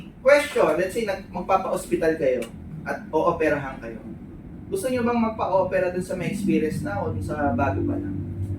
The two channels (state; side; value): identical; both; correlation 1.00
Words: Question, let's say magpapa-hospital kayo at o-operahan kayo. Gusto nyo bang magpa-opera dun sa may experience na o dun sa bago pa lang?